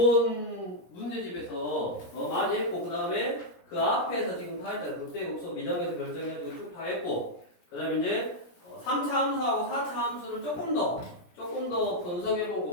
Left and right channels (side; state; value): right; late; 17 ms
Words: 문제집에서 많이 했고 그 다음에 그 앞에서 지금 다 했잖아. 극대 극소 미정에서 결정해가지고 쭉 다 했고 그 다음에 이제 3차 함수하고 4차 함수를 조금 더